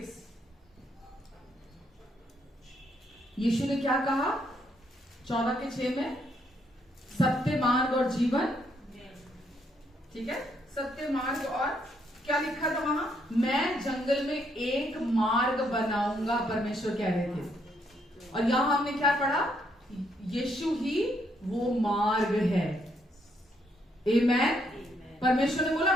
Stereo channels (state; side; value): normal; both; correlation 0.73